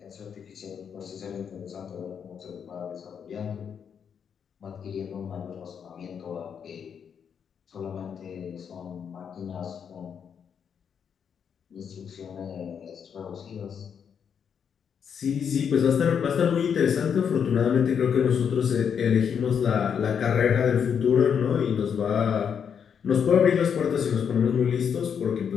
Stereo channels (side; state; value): right; quieter; 7.4 dB